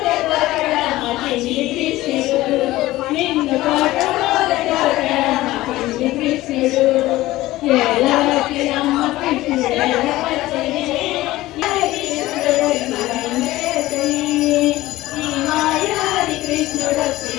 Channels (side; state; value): right; quieter; 17.1 dB